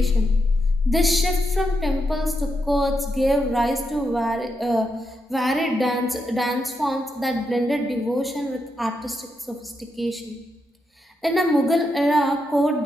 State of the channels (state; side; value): normal; both; correlation 0.83